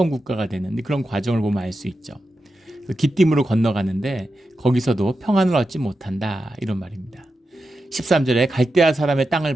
국가가 되는 그런 과정을 보면 알 수 있죠. 기띔으로 건너가는데 거기서도 평안을 얻지 못한다 이런 말입니다. 13절에 갈대아 사람의 땅을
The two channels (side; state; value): both; normal; correlation 0.90